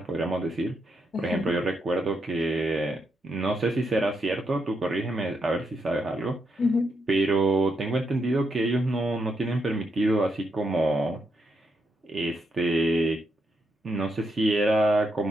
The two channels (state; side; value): normal; both; correlation 0.81